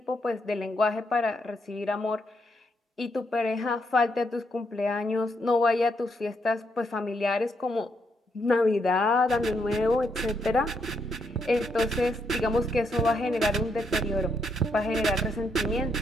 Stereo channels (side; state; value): both; normal; correlation 0.77